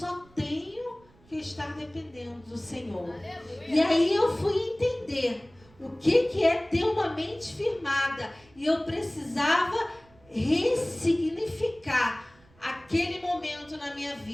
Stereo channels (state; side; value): noise; right; rumble, 29 dB below the sound